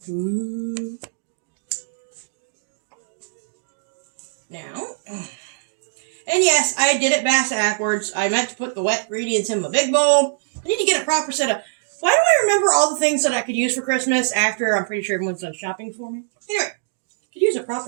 Ooh. Now, and yes, I did it backwards. I meant to put the wet ingredients in my big bowl. I need to get a proper set of... Why do I remember all the things that I could use for Christmas after I'm pretty sure everyone's done shopping for me? Anyway, I could use a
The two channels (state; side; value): silent; left; digital silence